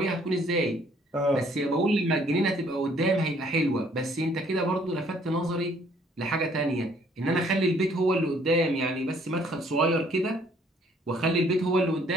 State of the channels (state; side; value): normal; both; correlation 0.62